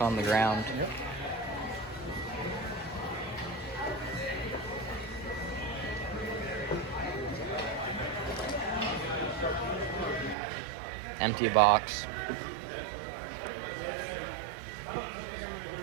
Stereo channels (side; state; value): left; drops out; at 10.4 s